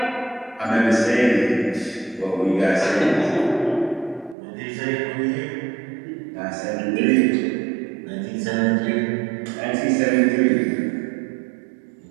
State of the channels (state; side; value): drops out; left; at 4.4 s